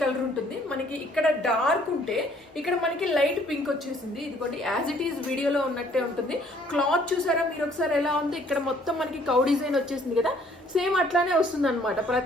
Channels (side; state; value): both; normal; correlation 0.61